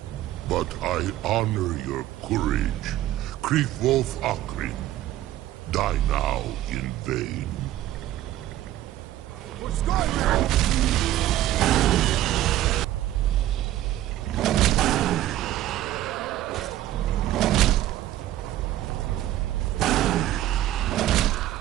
But I honor your courage. Krifwolf Akrin. Die now in vain. For Skyrim!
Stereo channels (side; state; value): left; quieter; 13.9 dB